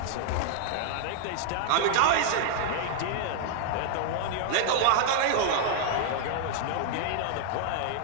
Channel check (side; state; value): both; different; correlation 0.00